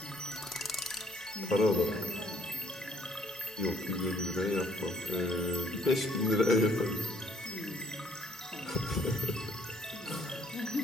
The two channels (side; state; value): both; normal; correlation 0.64